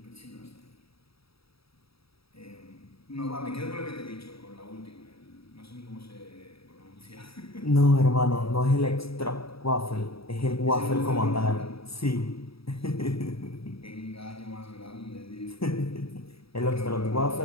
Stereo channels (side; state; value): right; late; 0.77 ms